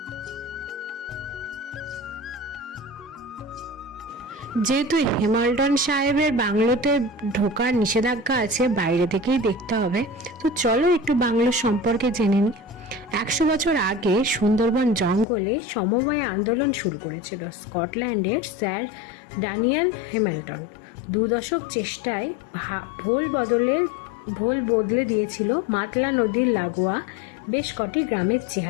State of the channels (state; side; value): drops out; right; at 15.2 s